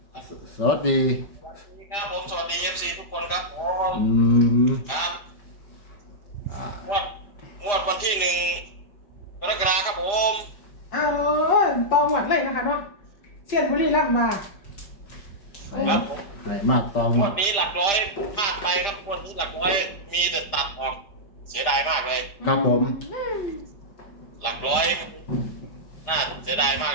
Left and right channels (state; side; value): late; right; 5.0 ms